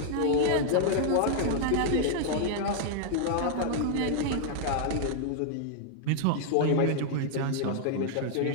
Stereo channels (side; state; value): both; different; correlation -0.01